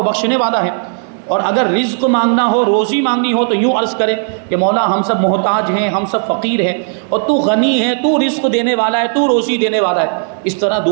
بخشنے والا ہے۔ اور اگر رزق مانگنا ہو، روزی مانگنی ہو، تو یوں عرض کریں کہ مولا ہم سب محتاج ہیں، ہم سب فقیر ہیں، اور تو غنی ہے، تو رزق دینے والا ہے، تو روزی دینے والا ہے۔ اس طرح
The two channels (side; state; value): left; silent; 57 dB below the other